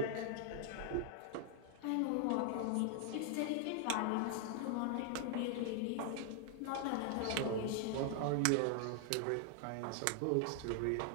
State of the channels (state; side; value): different; both; correlation 0.00